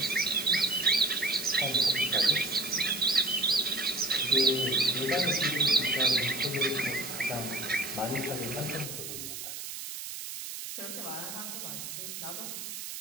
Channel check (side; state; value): right; noise; hiss, 8 dB below the sound